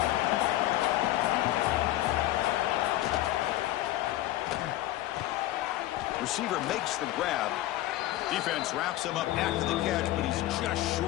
Receiver makes the grab. Defense wraps him up after the catch, but he's just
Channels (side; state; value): right; quieter; 15.3 dB